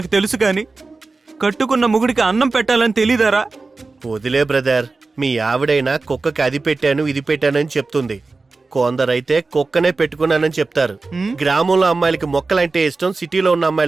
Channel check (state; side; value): quieter; left; 3.8 dB